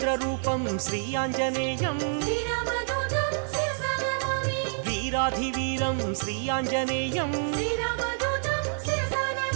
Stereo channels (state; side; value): silent; left; 60 dB below the other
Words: శ్రీయాంజనేయం శ్రీరామదూతం శిరసా నమామి వీరాధివీరం శ్రీయాంజనేయం శ్రీరామదూతం శిరసా